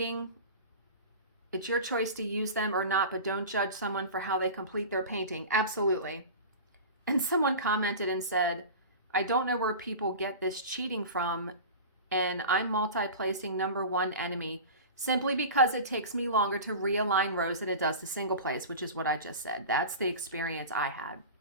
It's your choice to use them or not, but don't judge someone for how they complete their painting. Absolutely. And someone commented and said, I don't know where people get this cheating from, and I'm multi-placing number 1 enemy simply because it takes me longer to realign rows than it does to single place, which is what I just said. That's the experience I had.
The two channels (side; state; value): both; inverted; correlation -0.32